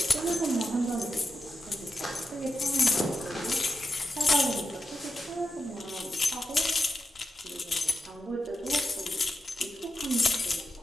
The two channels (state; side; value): normal; both; correlation 0.88